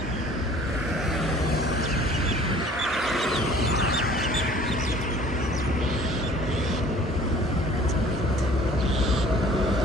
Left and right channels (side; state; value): both; normal; correlation 0.51